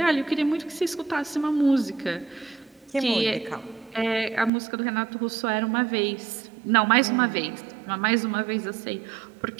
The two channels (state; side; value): drops out; left; at 4.5 s